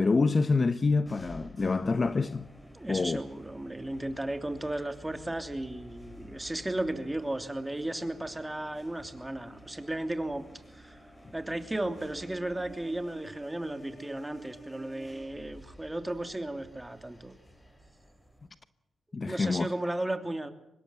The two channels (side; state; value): both; normal; correlation 0.95